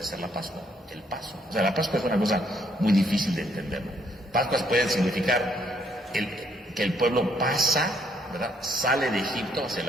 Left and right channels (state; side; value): normal; both; correlation 0.70